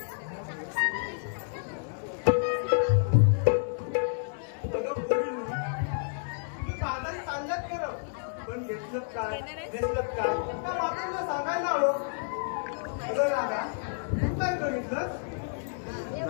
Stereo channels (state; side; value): silent; right; digital silence